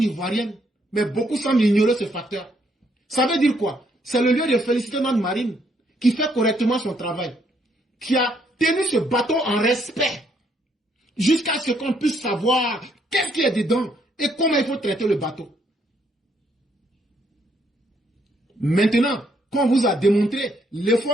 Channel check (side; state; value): both; normal; correlation 0.71